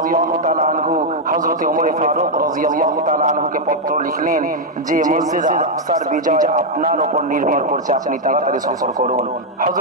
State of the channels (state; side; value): normal; both; correlation -0.01